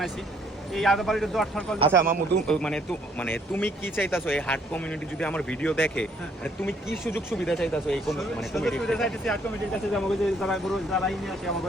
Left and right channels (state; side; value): normal; both; correlation 0.65